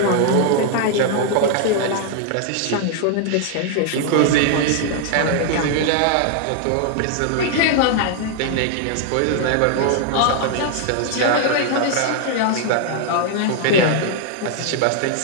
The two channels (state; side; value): different; both; correlation 0.00